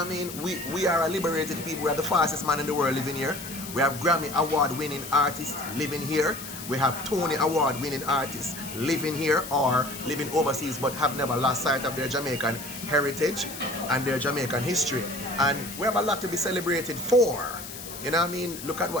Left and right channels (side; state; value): left; noise; hiss, 11 dB below the sound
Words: I mean? We are a liberated people. We are the fastest man in the world living here. We have Grammy award-winning artists living here. We have Tony award-winning artists living here or living overseas, but have never lost sight of their Jamaican heritage and their Jamaican history. And we have a lot to be celebrated for. You know what I mean? Look at